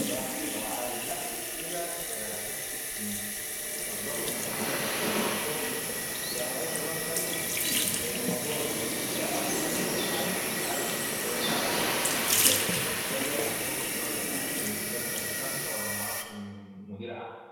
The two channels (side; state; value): both; identical; correlation 1.00